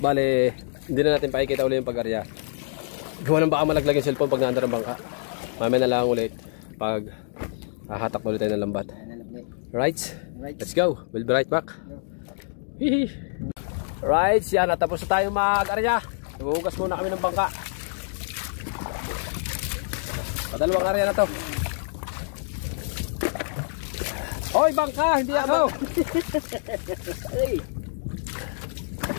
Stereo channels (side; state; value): right; silent; digital silence